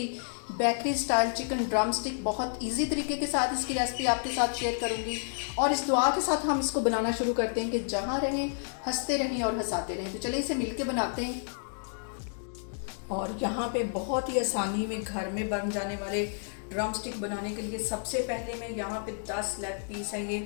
bakery style chicken drumstick. बहुत इजी तरीके के साथ इसकी रेसिपी आपके साथ शेयर करूँगी और इस दुआ के साथ हम इसको बनाना शुरू करते हैं कि जहाँ रहें हंसते रहें और हंसाते रहें। तो चलिए इसे मिल बनाते हैं। और यहाँ पे बहुत ही आसानी में घर में बन जाने वाले ड्रम स्टिक बनाने के लिए सबसे पहले मैं यहाँ पे 10 लेग पीस है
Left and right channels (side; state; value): right; silent; digital silence